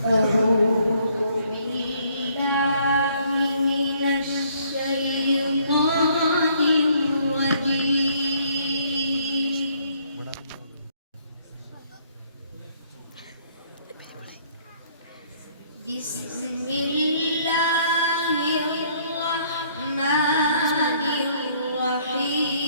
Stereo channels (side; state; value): both; inverted; correlation -0.64